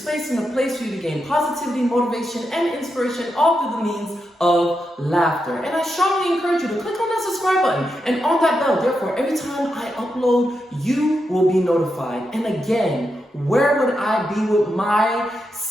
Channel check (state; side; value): normal; both; correlation 0.85